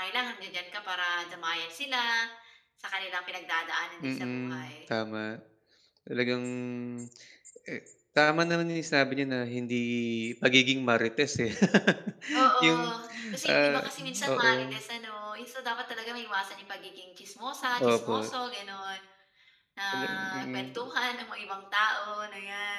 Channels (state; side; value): identical; both; correlation 1.00